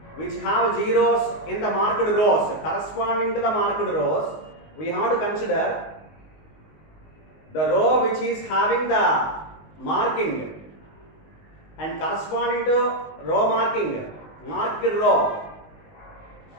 which have zeros in the marked rows. Corresponding to the marked rows, we have to consider the row which is having the marking and corresponding to row marking, marked row.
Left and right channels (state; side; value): late; right; 19 ms